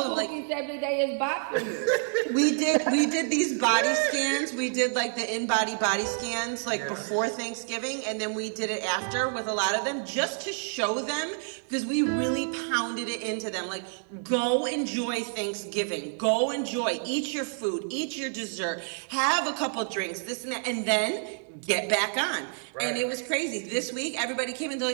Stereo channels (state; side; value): silent; left; 59 dB below the other